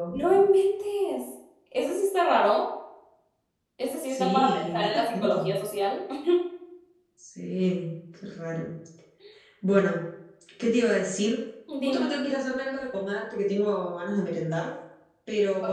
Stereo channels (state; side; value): identical; both; correlation 1.00